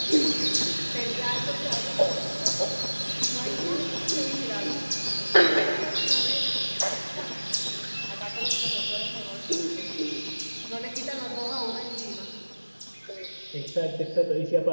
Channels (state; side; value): inverted; both; correlation -1.00